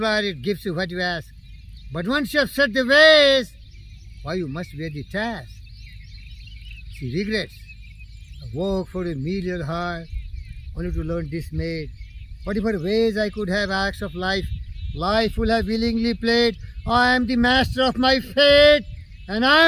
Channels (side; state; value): both; identical; correlation 1.00